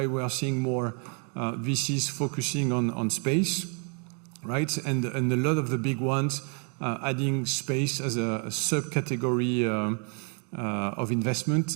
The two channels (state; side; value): quieter; left; 37.3 dB